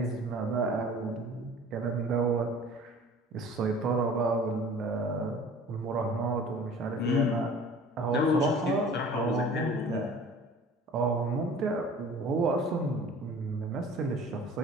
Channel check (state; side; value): normal; both; correlation 0.45